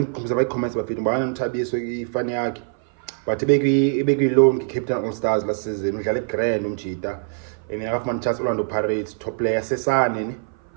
abayi-comments bafethu mbana noThabiso ifani yakhe, but ibekwi-loan Captain All Stars last season udlala eGrand uMachita, and akafumana chance Orlando Pirates top player Sesane ne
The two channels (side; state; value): left; silent; 55 dB below the other